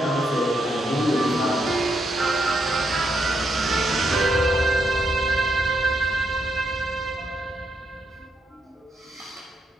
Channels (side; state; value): both; normal; correlation 0.79